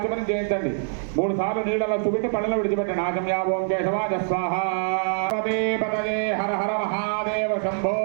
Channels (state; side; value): silent; left; 62 dB below the other